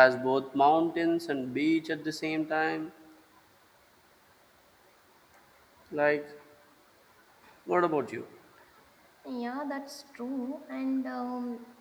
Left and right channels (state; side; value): identical; both; correlation 1.00